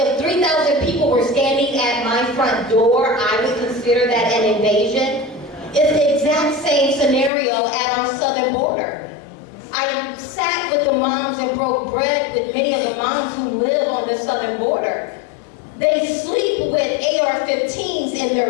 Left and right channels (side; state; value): right; drops out; at 7.3 s